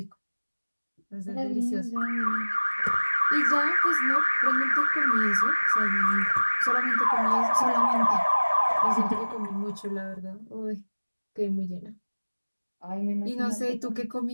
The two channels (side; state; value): both; inverted; correlation -1.00